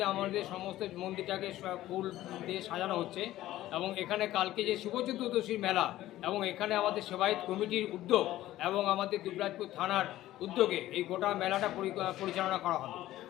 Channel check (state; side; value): quieter; right; 14.9 dB